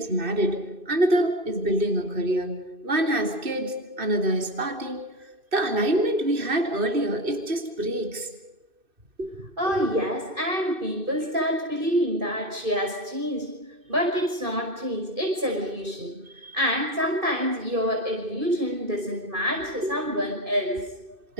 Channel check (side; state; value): left; late; 2.6 ms